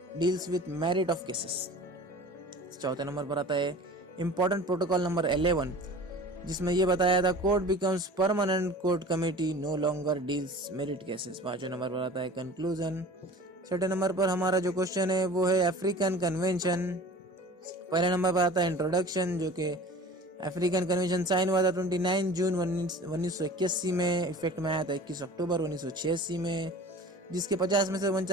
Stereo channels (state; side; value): normal; both; correlation 0.41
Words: deals with merit of cases. चौथे नंबर पर आता है इंपॉर्टेंट प्रोटोकॉल नंबर 11, जिसमें यह बताया था court becomes permanent court committee no longer deals merit cases. पांचवें नंबर पर आता है कंक्लूजन। छठे नंबर पर हमारा जो क्वेश्चन है वो है अफ्रीकन कन्वेंशन। पहले नंबर पर आता है इंट्रोडक्शन, जो कि अफ्रीकन कन्वेंशन साइन हुआ था 29 जून 1981 में, इफेक्ट में आया था 21 अक्टूबर 1986 में, जिसके 50 में से